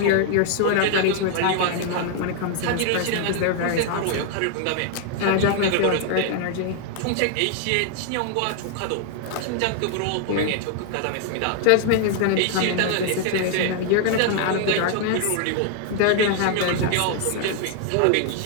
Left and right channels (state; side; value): different; both; correlation 0.00